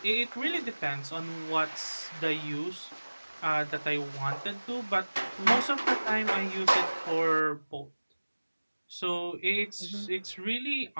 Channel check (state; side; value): inverted; both; correlation -1.00